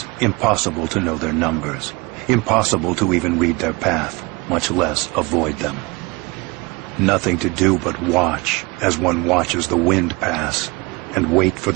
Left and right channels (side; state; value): left; quieter; 25.6 dB